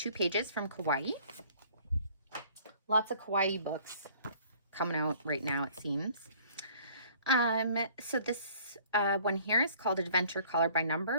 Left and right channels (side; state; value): both; inverted; correlation -0.55